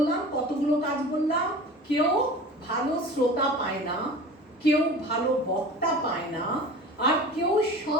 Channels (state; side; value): normal; both; correlation 0.38